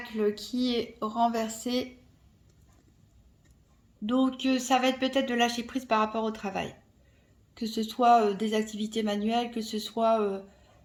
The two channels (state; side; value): identical; both; correlation 1.00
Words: qui est renversé. Donc, ça va être peut-être de lâcher prise par rapport au travail. Que ce soit des activités manuelles, que ce soit